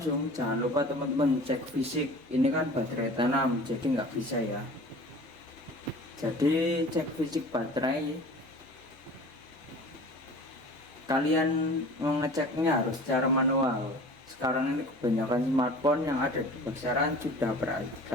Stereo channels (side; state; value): both; normal; correlation 0.42